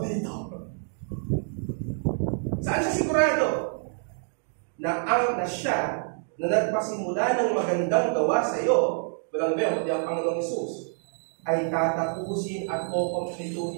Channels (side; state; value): left; silent; 60 dB below the other